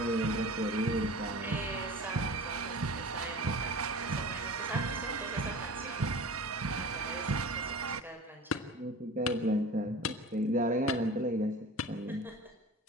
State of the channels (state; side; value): normal; both; correlation 0.37